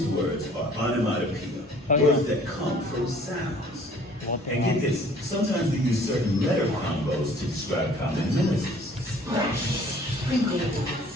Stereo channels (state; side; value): normal; both; correlation 0.54